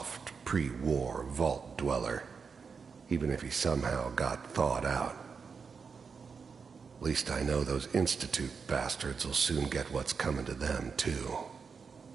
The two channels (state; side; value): quieter; left; 5.6 dB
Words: pre-war vault dweller, even if he somehow got thawed out. At least I know those Institute bastards will soon get what's coming to them, too.